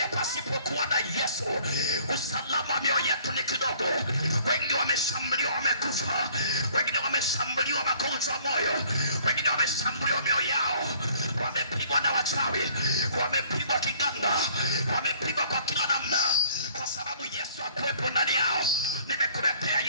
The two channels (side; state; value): both; inverted; correlation -0.57